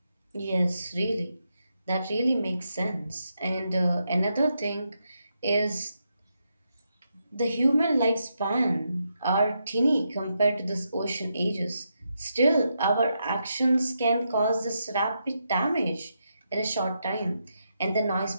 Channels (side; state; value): both; inverted; correlation -0.83